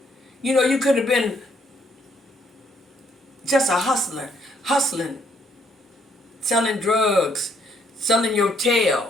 You know, you could have been just a hustler, hustling, selling drugs, selling your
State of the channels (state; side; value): normal; both; correlation 0.69